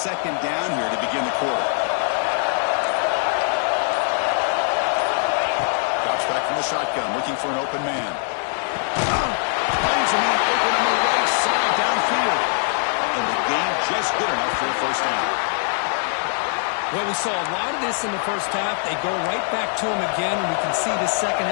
down here to begin the quarter. Drops back from the shotgun, looking for an open man. Finds a man open on the right side downfield. And the game just good enough for a first down. Well, we saw a lot of this in the first half. They go right back to him again, and we can see the second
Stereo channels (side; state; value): right; silent; 56 dB below the other